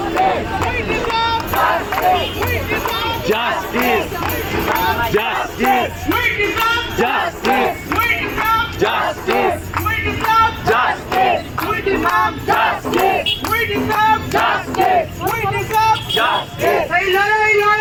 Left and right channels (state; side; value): identical; both; correlation 1.00